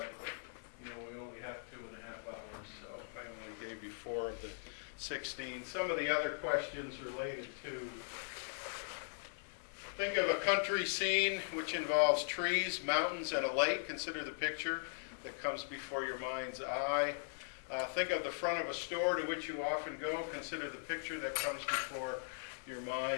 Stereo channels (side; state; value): right; silent; 51 dB below the other